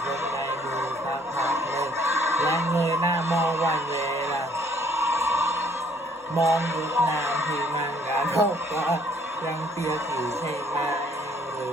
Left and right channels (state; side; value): normal; both; correlation 0.62